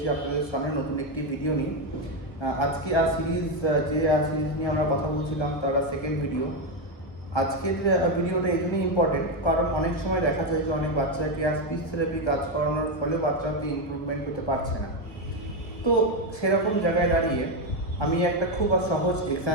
আপনাদের সামনে নতুন একটি ভিডিও নিয়ে। আজকে সিরিজ নিয়ে আমরা কথা বলছিলাম, তার সেকেন্ড ভিডিও। আজকের ভিডিওটা এই জন্যই ইম্পর্টেন্ট কারণ অনেক সময় দেখা যায় যে অনেক বাচ্চাকে স্পিচ থেরাপি কাজ করানোর ফলে বাচ্চাতে ইমপ্রুভমেন্ট হতে পারছে না। তো সেরকম জায়গায় দাঁড়িয়ে আমি একটা খুব সহজ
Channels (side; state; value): right; late; 1.1 ms